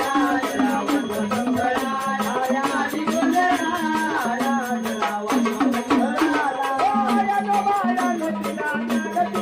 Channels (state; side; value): identical; both; correlation 1.00